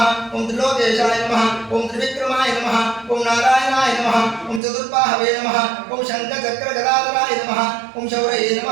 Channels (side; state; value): left; drops out; at 4.6 s